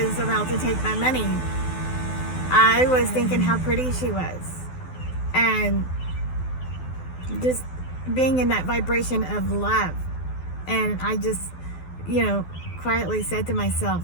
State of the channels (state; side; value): late; right; 12 ms